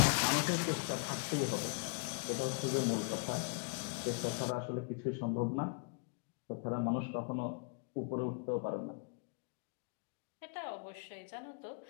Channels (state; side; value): quieter; right; 37.3 dB